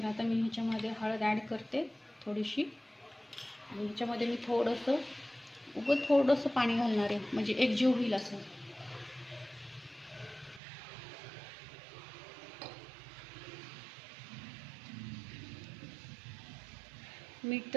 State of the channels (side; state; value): left; drops out; at 10.6 s